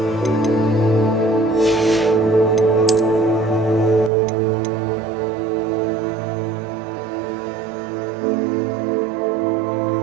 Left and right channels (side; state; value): left; drops out; at 4.1 s